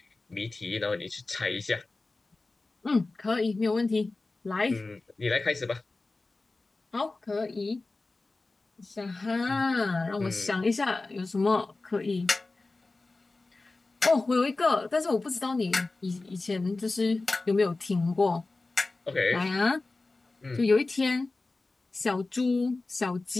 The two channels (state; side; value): quieter; right; 3.4 dB